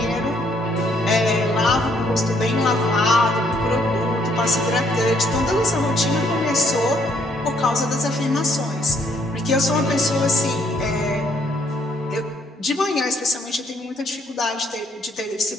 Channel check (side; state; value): both; normal; correlation 0.68